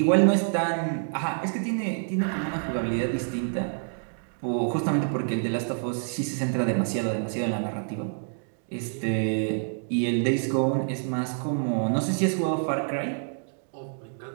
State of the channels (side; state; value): left; silent; digital silence